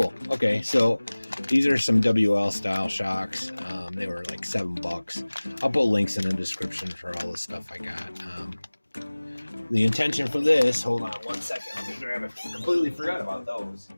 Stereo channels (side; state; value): both; inverted; correlation -1.00